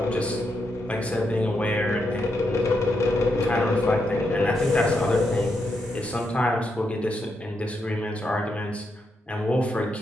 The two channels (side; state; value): both; normal; correlation 0.82